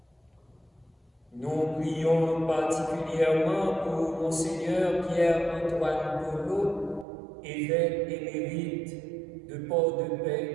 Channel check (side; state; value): left; drops out; at 7.1 s